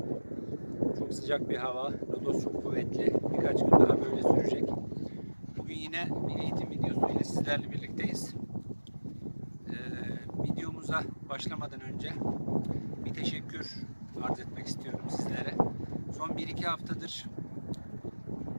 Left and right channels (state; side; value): inverted; both; correlation -1.00